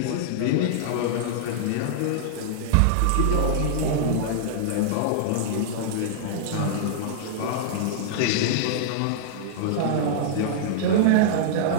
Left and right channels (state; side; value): different; both; correlation -0.01